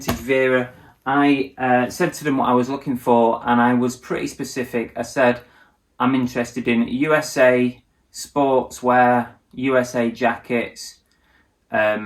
Vera, I said to them what I was looking for, and I was pretty specific. I said, I'm interested in USA sportswear, USA jackets,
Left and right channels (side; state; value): both; identical; correlation 1.00